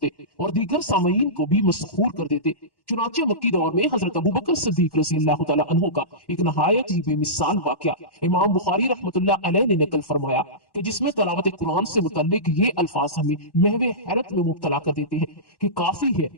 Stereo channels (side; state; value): right; late; 1.1 ms